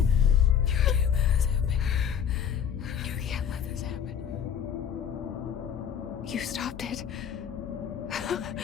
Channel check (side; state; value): right; quieter; 8.3 dB